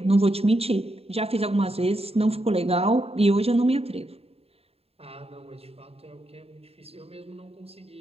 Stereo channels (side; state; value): left; late; 0.29 ms